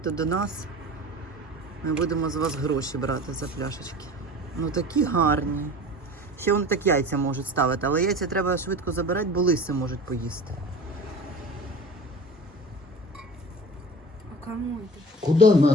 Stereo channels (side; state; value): both; normal; correlation 0.38